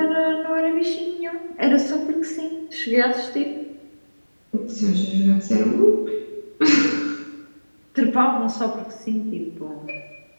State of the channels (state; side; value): inverted; both; correlation -1.00